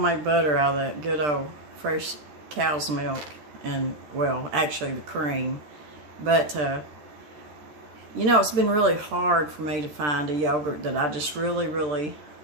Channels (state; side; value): late; left; 13 ms